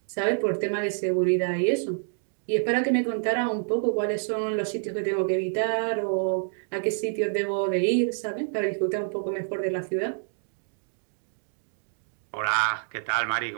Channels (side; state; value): left; silent; digital silence